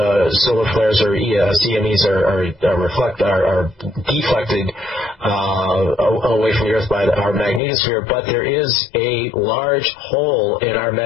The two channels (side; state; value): right; drops out; at 7.6 s